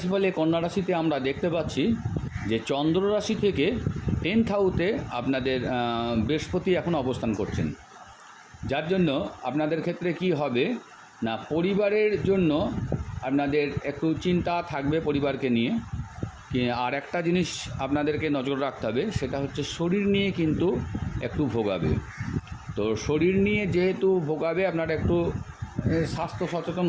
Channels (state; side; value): identical; both; correlation 1.00